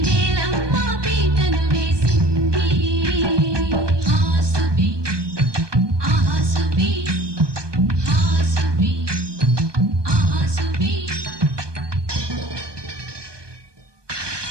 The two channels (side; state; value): left; late; 1.2 ms